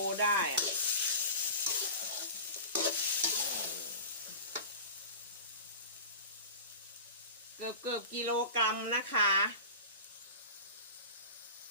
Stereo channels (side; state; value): both; inverted; correlation -0.34